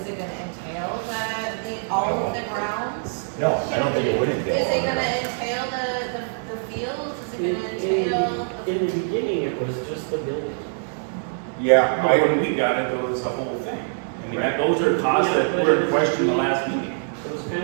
it gonna entail all of the grounds? No, I don't think it would entail. Is it gonna entail the fields, is it gonna entail? In the beginning, it was just the building. Yeah, But when we got it, it was the whole thing. I mean, those are costs that were in question the last meeting. It was kind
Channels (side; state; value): left; silent; digital silence